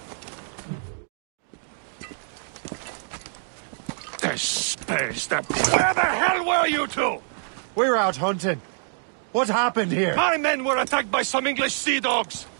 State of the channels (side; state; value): left; silent; digital silence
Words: Espèce de... Where the hell were you two? We're out hunting. What happened here? My men were attacked by some English sea dogs.